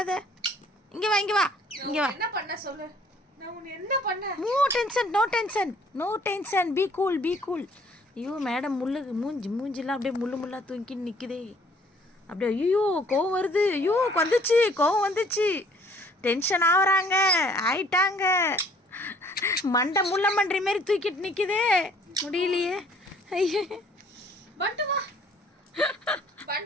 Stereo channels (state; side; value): normal; both; correlation 0.59